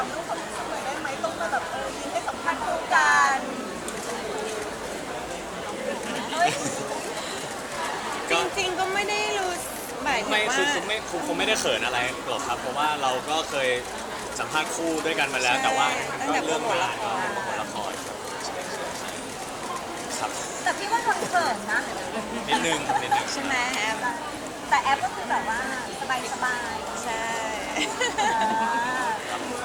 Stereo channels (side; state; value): both; identical; correlation 1.00